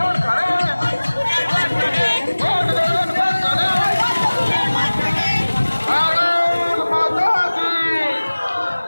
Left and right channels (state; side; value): inverted; both; correlation -1.00